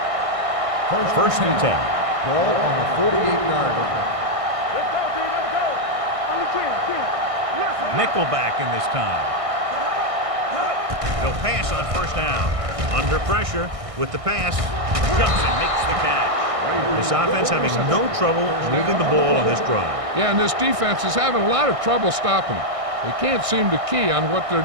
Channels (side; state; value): left; late; 1.6 ms